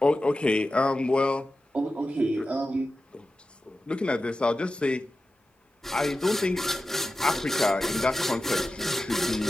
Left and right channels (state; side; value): normal; both; correlation 0.93